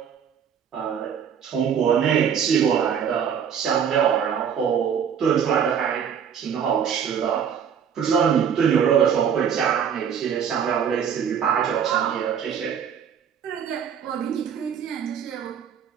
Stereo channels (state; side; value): quieter; left; 7.9 dB